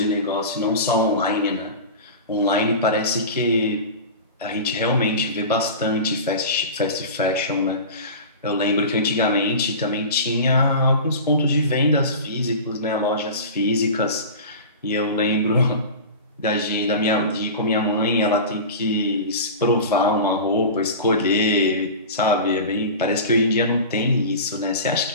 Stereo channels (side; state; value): both; inverted; correlation -0.32